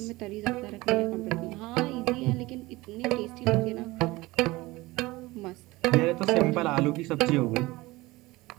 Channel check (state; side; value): quieter; left; 20.5 dB